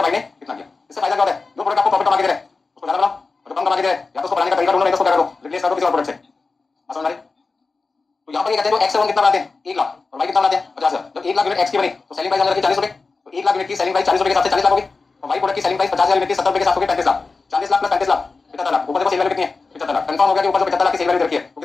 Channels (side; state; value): right; quieter; 4.1 dB